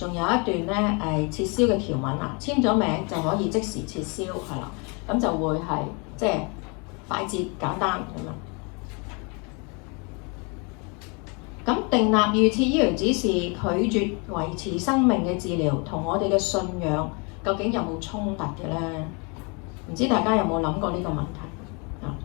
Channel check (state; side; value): quieter; right; 32.5 dB